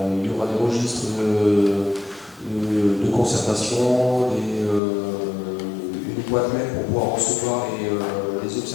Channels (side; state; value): right; drops out; at 4.8 s